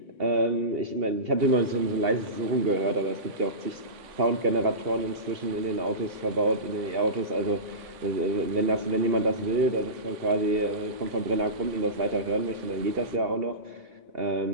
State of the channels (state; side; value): late; left; 2.8 ms